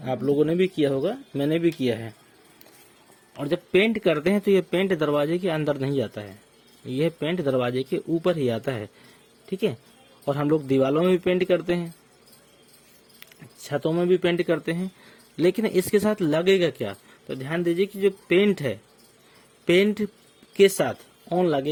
आप लोगों ने भी किया होगा, मैंने भी किया है। और जब पेंट करते हैं तो ये पेंट दरवाजे के अंदर नहीं जाता है, यह पेंट दरवाजे के ऊपर ही आता है, ठीक है। और हम लोग दीवालों में भी पेंट करते हैं, छतों में भी पेंट करते हैं, लेकिन इसके साथ लगेगा क्या? तो ध्यान दीजिए कि जो पेंट है, पेंट के साथ ऑन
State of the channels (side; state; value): both; identical; correlation 1.00